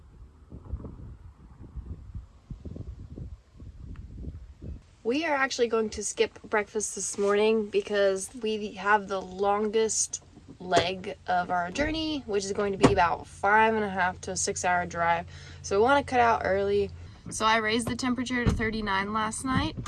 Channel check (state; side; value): identical; both; correlation 1.00